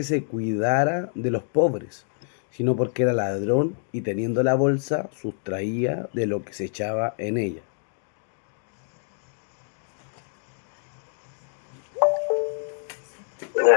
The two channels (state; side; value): silent; right; digital silence